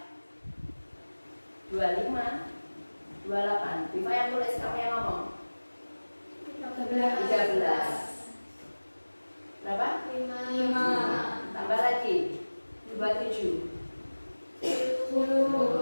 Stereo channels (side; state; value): both; inverted; correlation -1.00